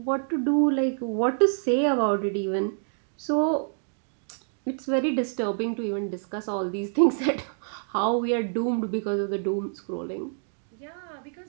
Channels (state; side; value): silent; left; digital silence